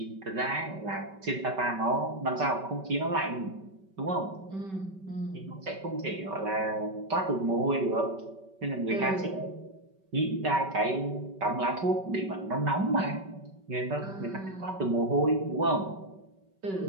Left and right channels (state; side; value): late; left; 5.2 ms